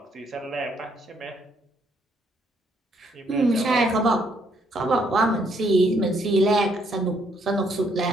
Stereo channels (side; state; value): both; normal; correlation 0.70